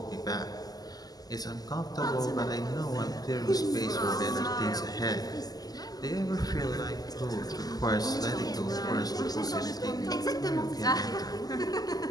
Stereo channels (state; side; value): late; right; 0.18 ms